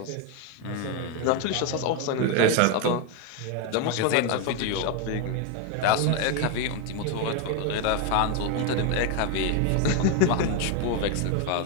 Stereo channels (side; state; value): both; different; correlation 0.02